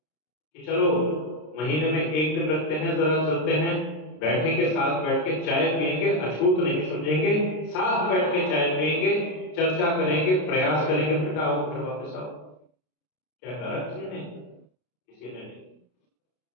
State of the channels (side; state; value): right; late; 33 ms